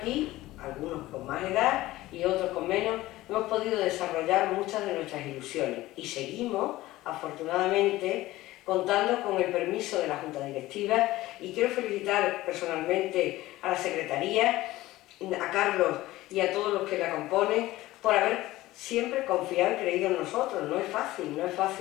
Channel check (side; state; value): right; quieter; 17.2 dB